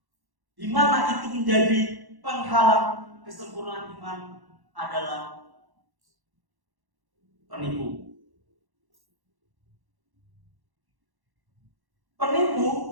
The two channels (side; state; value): left; late; 1.1 ms